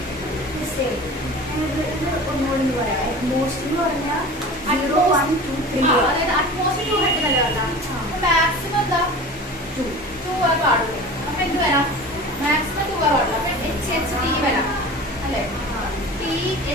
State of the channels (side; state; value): both; normal; correlation 0.37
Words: Maximum എന്താ 2 പാടുള്ളൂ. അപ്പൊ എന്ത് വരാം? മാക്സിമം 2 പാടുള്ളൂ. അപ്പൊ HHT വരാം അല്ലെ?